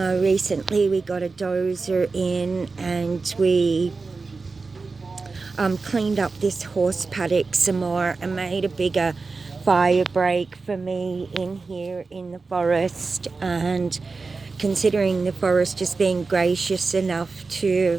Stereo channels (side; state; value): left; quieter; 4.1 dB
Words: we got a dozer in, and we cleaned up this horse paddock some more and made a bigger fire break for me in here in the forest. And considering the forest is being gracious enough